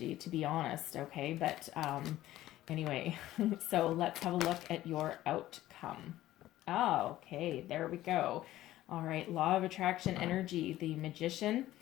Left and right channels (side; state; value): right; quieter; 14.8 dB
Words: to be honest, okay, but anyway, so let's have a look at your outcome. Oh, okay, there we go. All right, law of attraction energy, the Magician.